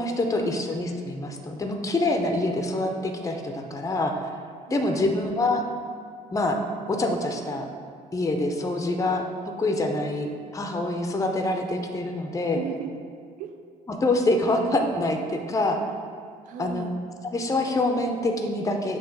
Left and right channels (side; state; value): both; normal; correlation 0.61